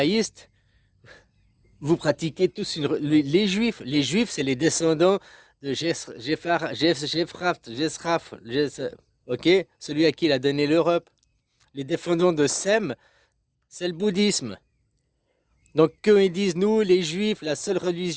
vous pratiquez tous les juifs. Les juifs, c'est les descendants de ok, celui à qui il a donné l'Europe. Les descendants de Sem, c'est le bouddhisme. Donc quand ils disent nous, les juifs, la seule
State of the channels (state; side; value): identical; both; correlation 1.00